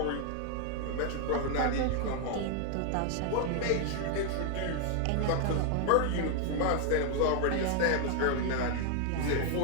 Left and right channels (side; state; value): both; different; correlation 0.00